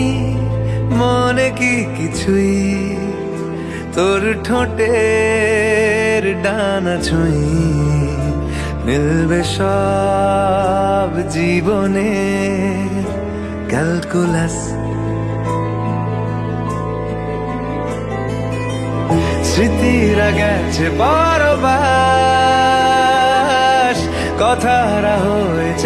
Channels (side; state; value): both; identical; correlation 1.00